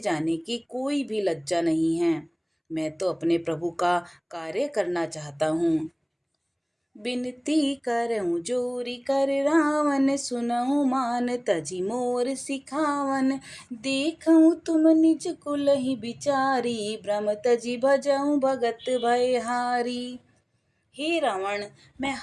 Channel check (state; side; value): identical; both; correlation 1.00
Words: की कोई भी लज्जा नहीं है। मैं तो अपने प्रभु का कार्य करना चाहता हूँ। बिनती करऊं जोरी कर रावण, सुनऊं मान तजी मोर सिखावन। देखऊं तुम निज कुलहि बिचारी, भ्रम तजी भजऊं भगत भयहारी। हे रावण, मैं